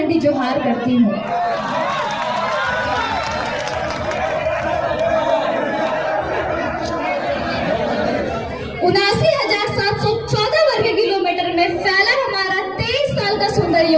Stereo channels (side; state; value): right; noise; rumble, 26 dB below the sound